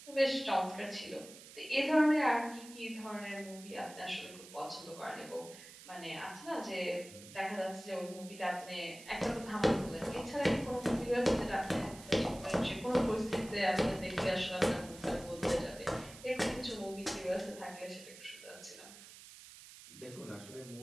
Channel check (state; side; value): noise; right; hiss, 17 dB below the sound